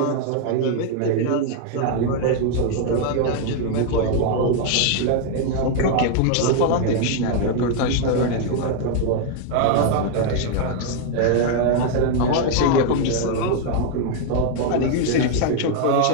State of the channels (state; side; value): different; both; correlation 0.00